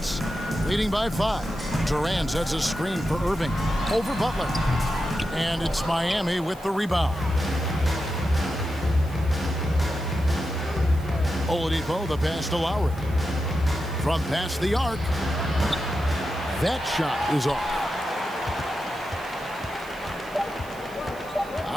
leading by 5. Durant sets a screen for Irving over Butler. And it's Miami with the rebound. Oladipo, the pass to Lowry. From past the arc. That shot is off.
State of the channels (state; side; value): noise; right; hiss, 22 dB below the sound